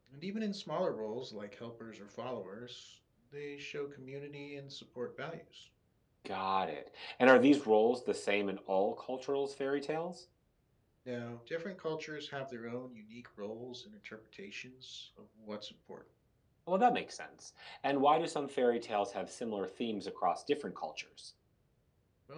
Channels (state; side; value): identical; both; correlation 1.00